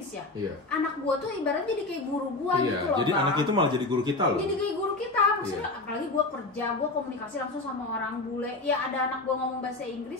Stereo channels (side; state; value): right; quieter; 3.1 dB